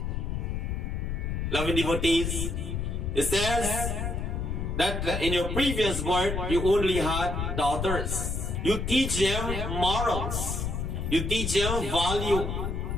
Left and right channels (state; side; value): noise; left; rumble, 2 dB below the sound